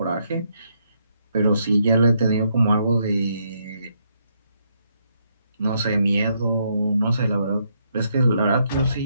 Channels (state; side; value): inverted; both; correlation -0.75